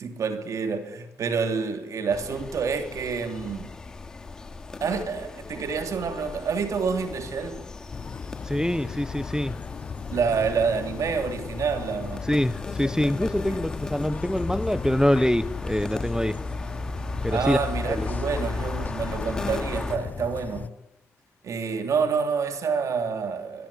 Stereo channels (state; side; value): normal; both; correlation 0.80